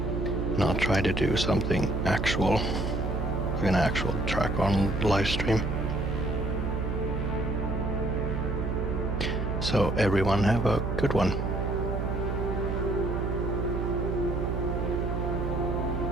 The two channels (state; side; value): noise; right; hum, 1 dB below the sound